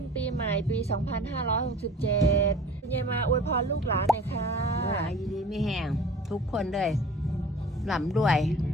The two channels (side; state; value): both; normal; correlation 0.44